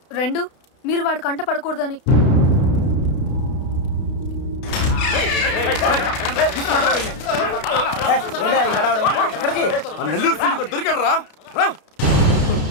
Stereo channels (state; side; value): late; right; 32 ms